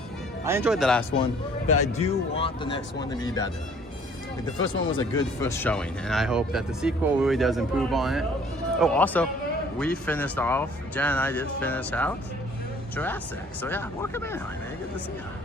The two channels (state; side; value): normal; both; correlation 0.56